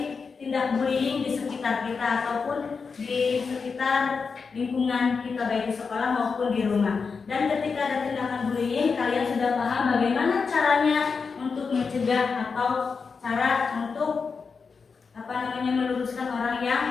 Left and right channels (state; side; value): quieter; right; 5.2 dB